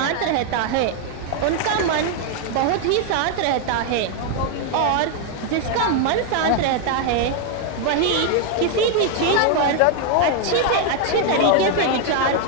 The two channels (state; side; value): different; both; correlation 0.01